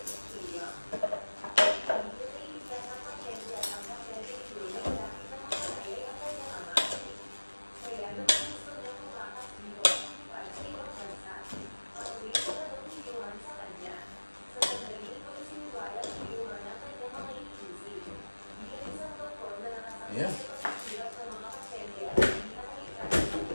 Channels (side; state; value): both; inverted; correlation -1.00